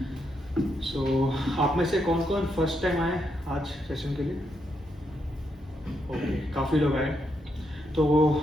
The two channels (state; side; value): normal; both; correlation 0.80